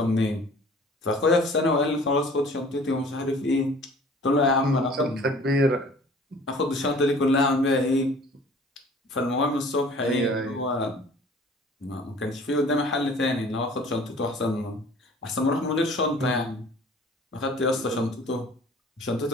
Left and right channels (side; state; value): both; normal; correlation 0.50